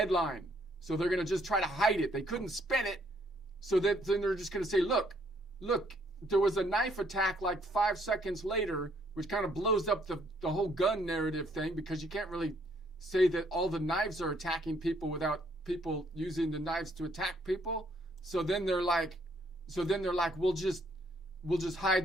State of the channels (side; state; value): both; normal; correlation 0.67